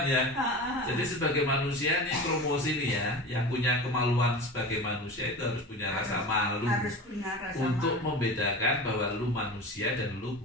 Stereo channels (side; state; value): both; normal; correlation 0.31